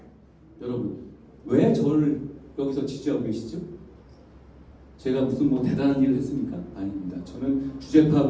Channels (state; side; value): identical; both; correlation 1.00